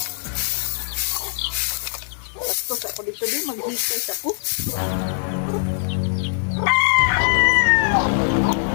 Tapos ako dito din maghikay sa ko.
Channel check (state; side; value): silent; right; digital silence